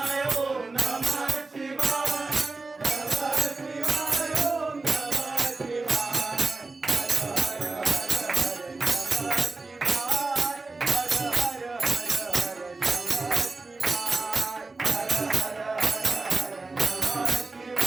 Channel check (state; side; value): quieter; left; 3.6 dB